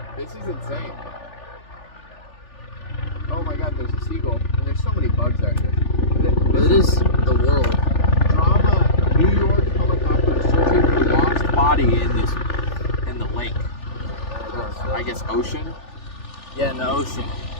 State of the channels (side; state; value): right; late; 3.4 ms